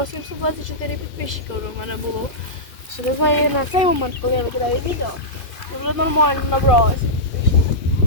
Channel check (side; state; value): right; late; 2.4 ms